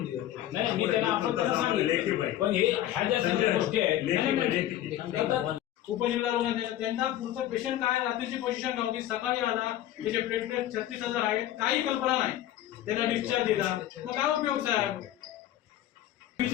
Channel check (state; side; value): quieter; right; 13.0 dB